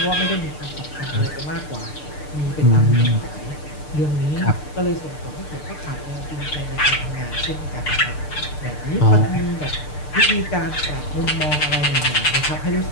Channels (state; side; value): late; right; 6.7 ms